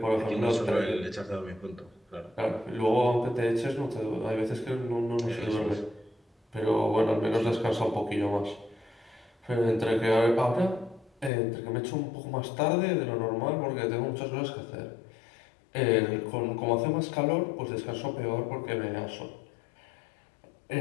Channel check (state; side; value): drops out; right; at 11.3 s